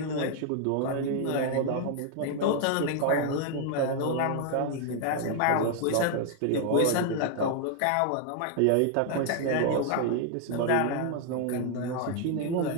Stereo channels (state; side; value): different; both; correlation 0.00